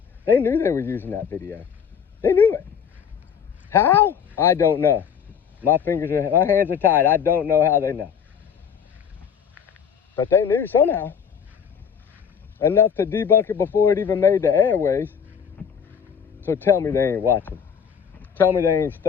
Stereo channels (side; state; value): right; quieter; 7.3 dB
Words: They knew they were using that video. They knew it. How? I don't know. My hands are tied. I don't know how they know. But they knew somehow. Enough to debunk it before it even made the airways. So tell me they ain't watching. Tell me they ain't